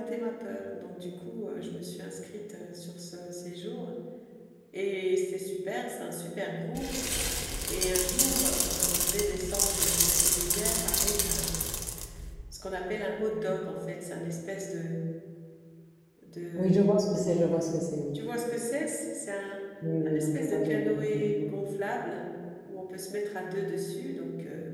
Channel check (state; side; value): identical; both; correlation 1.00